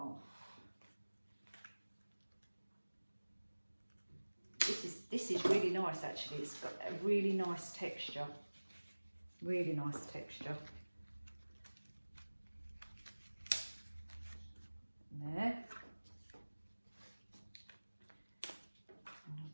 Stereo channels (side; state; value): both; inverted; correlation -1.00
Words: This is really nice actually. It's got a really nice texture. Really nice texture. There. And I'll